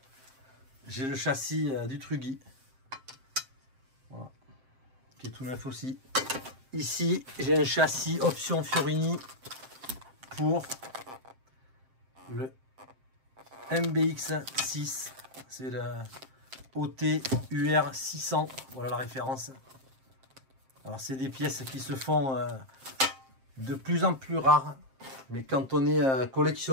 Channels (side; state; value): left; late; 7.6 ms